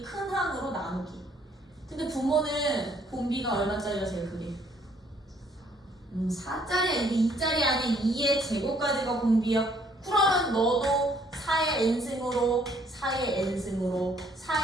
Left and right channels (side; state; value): both; normal; correlation 0.64